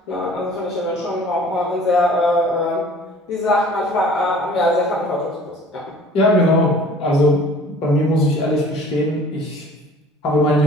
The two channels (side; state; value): both; normal; correlation 0.49